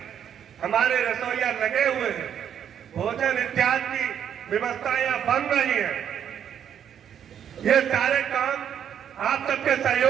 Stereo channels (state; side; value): quieter; left; 9.0 dB